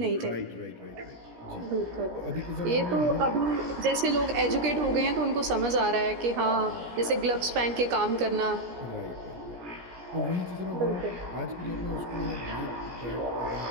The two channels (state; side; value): late; left; 17 ms